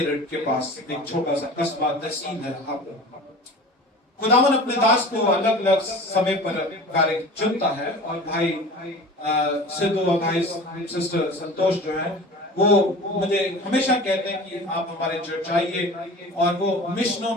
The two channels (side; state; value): both; normal; correlation 0.39